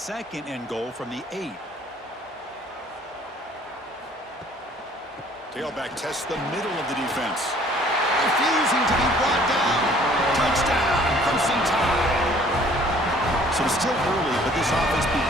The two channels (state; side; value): normal; both; correlation 0.56